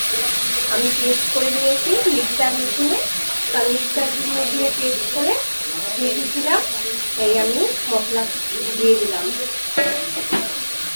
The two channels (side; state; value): both; inverted; correlation -1.00